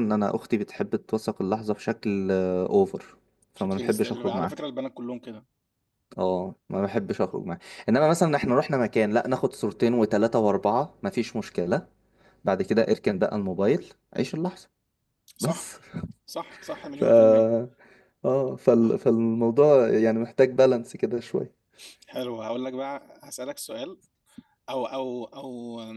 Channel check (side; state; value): both; identical; correlation 1.00